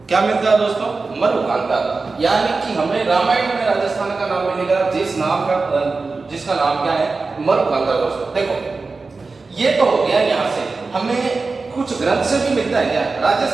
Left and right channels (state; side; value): quieter; left; 4.0 dB